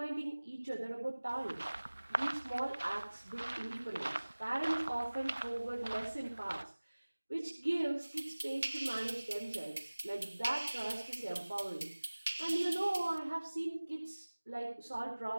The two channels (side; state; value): both; inverted; correlation -1.00